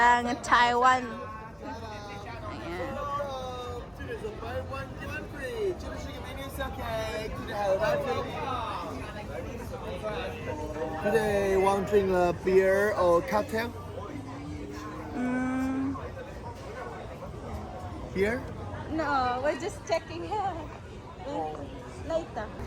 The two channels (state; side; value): identical; both; correlation 1.00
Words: ang Taiwan. Ayan. Today, want to drink a beer or cocktail? Beer? No, we're just checking here. Later.